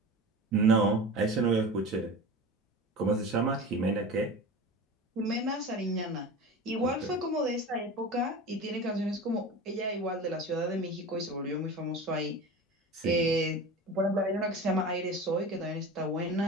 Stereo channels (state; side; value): normal; both; correlation 0.33